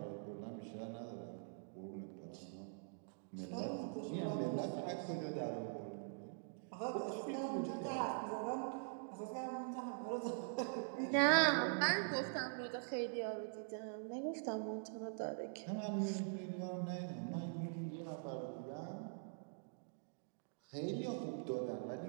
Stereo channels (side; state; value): left; silent; digital silence